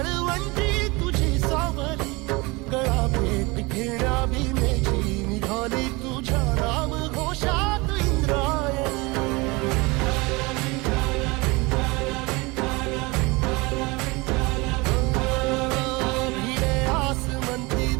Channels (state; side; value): quieter; left; 24.9 dB